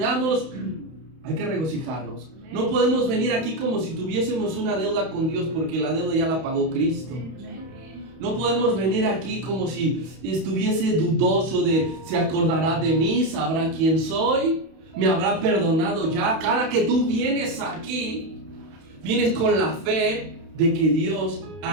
hay que regocijarnos. No podemos venir aquí como si tuviésemos una deuda con Dios, porque la deuda ya la pagó Cristo. No podemos venir aquí como si estuviese dudoso de: ¿se acordará de mí? ¿Sabrá quién soy? ¿Me habrá perdonado ya? Cada que tú vienes aquí, vienes con la fe de que Dios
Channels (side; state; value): left; late; 31 ms